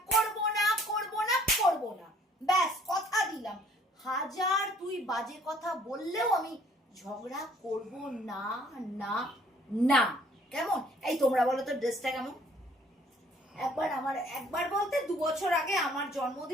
করব না, করব না, করব না, ব্যাস কথা দিলাম। হাজার তুই বাজে কথা বললেও আমি ঝগড়া করব না, না, না। কেমন এই তোমরা বলো তো ড্রেসটা কেমন? একবার বলতে 2 বছর আগে আমার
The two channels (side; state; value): both; normal; correlation 0.59